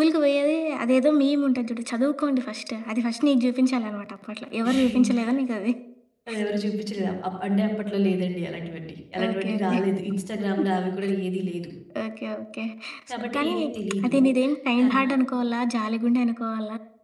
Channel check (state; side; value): identical; both; correlation 1.00